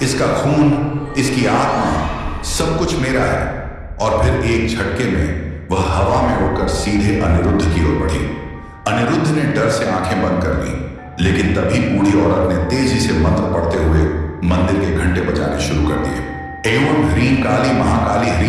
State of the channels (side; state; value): both; identical; correlation 1.00